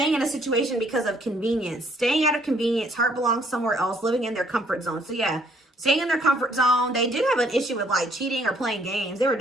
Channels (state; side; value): normal; both; correlation 0.64